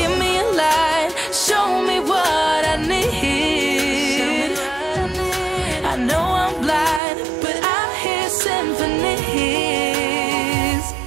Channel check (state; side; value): drops out; left; at 7.0 s